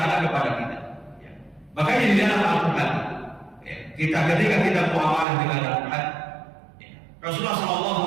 kepada kita. Makanya di dalam Al-Quran, ya, ketika kita muamalah dengan Al-Quran, ya, Rasulullah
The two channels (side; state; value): left; drops out; at 5.2 s